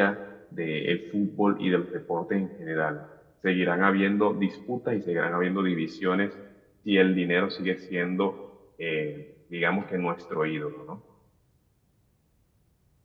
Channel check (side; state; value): both; identical; correlation 1.00